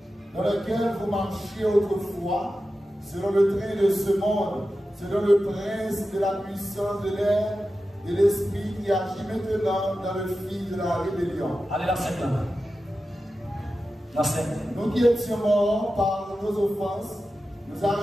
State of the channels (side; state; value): both; normal; correlation 0.92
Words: Dans lequel vous marchiez autrefois, selon le train de ce monde, selon le prince de la puissance de l'air et l'esprit qui agit maintenant dans le fil de la rébellion. Allez, la scène là. La scène. Nous qui étions morts par nos offenses, nous a